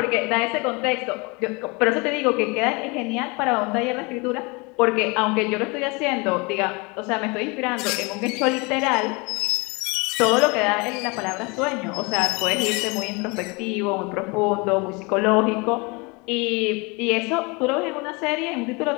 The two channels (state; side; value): quieter; right; 28.2 dB